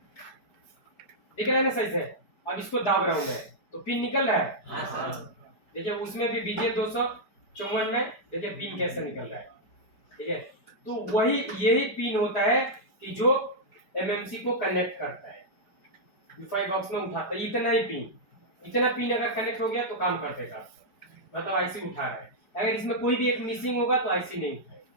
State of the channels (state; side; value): late; right; 4.9 ms